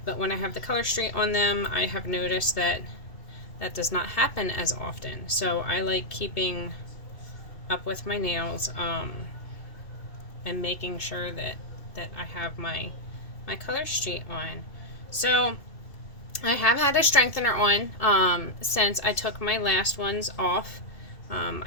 But when I have the color street on them, I have noticed that that does not happen as often. So I like keeping up with my nails and making sure that I have my color street on. So I have had a strengthener on since I took my last ones off.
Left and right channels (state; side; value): late; right; 2.7 ms